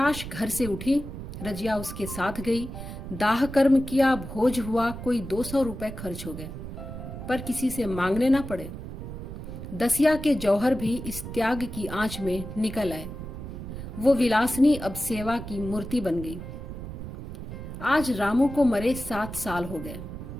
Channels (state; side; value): noise; right; rumble, 9 dB below the sound